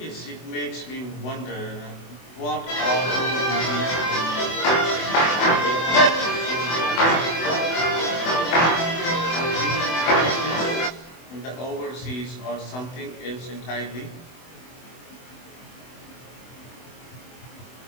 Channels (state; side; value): late; right; 24 ms